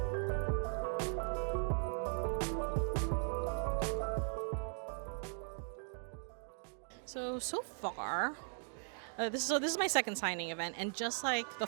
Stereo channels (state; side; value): silent; left; 52 dB below the other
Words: So far, this is my second signing event, and just like the